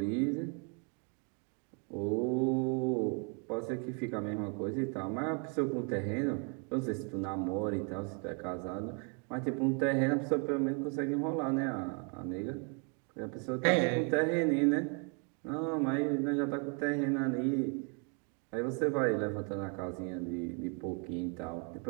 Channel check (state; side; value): quieter; left; 37.2 dB